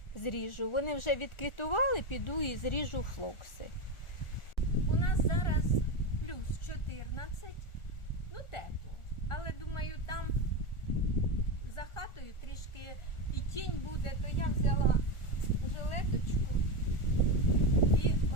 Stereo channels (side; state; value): right; late; 1.4 ms